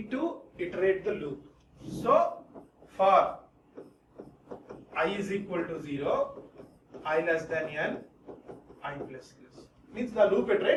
to iterate the loop. So for I is equal to 0, I less than n, I plus plus. Means the loop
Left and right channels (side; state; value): both; identical; correlation 1.00